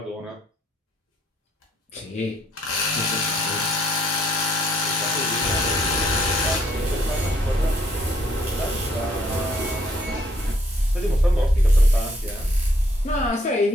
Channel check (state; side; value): normal; both; correlation 0.67